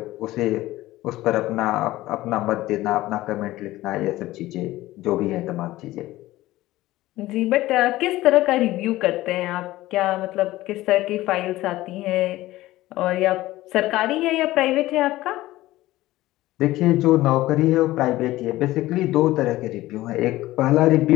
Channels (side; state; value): right; quieter; 16.9 dB